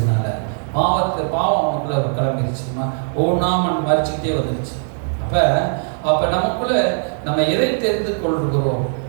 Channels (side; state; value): left; silent; digital silence